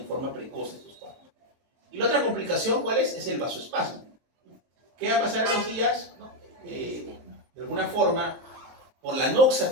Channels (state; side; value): late; left; 23 ms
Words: forma precoz estos cuadros. Y la otra complicación, ¿cuál es? Es el vasoespasmo. ¿Qué va a pasar en los días? ¿No? De alguna forma, por la noxa